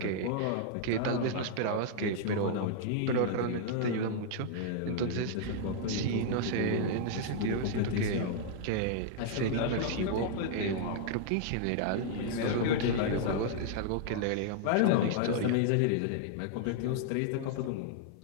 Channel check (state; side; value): different; both; correlation -0.01